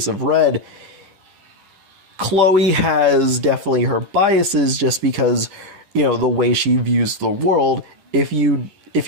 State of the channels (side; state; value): left; late; 10 ms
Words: of Red, Chloe has definitely her biases just because, the way she views the world. If you